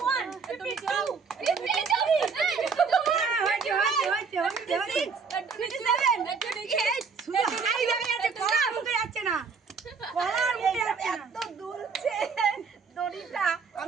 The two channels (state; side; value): quieter; left; 5.3 dB